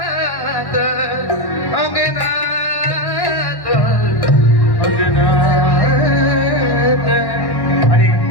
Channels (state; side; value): late; right; 1.1 ms